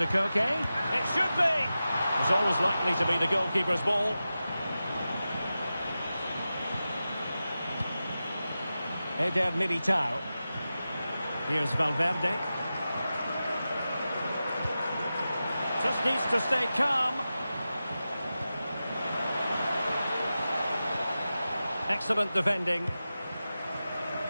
Koke. It should be! It's always likely to be the goalkeeper's ball. Eder Militao. Here's Valverde. Just needs to stay calm. Excellent defending.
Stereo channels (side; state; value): both; inverted; correlation -0.93